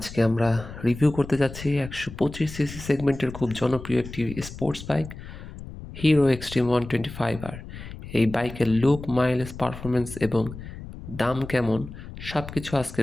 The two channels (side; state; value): left; noise; rumble, 12 dB below the sound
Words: আমরা রিভিউ করতে যাচ্ছি 125 সিসি সেগমেন্টের খুব জনপ্রিয় একটি sports bike, hero extreme 125R। এই বাইকের লুক, মাইলেজ, পারফরমেন্স এবং দাম কেমন সব কিছু